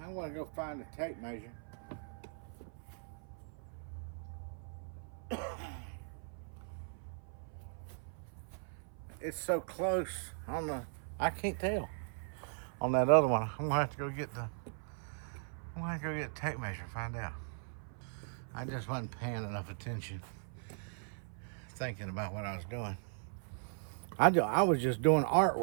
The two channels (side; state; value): left; silent; 52 dB below the other